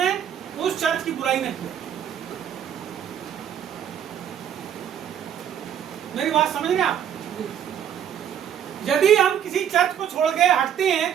उस चर्च की बुराई नहीं की? मेरी बात समझ रहे आप? यदि हम किसी चर्च को छोड़ के हटते हैं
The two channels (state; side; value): quieter; left; 9.4 dB